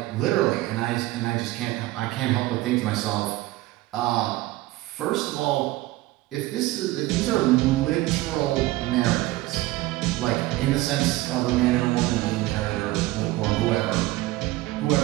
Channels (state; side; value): quieter; left; 18.1 dB